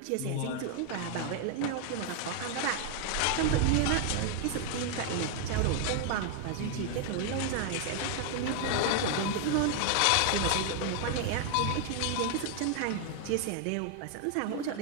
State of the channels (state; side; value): different; both; correlation 0.00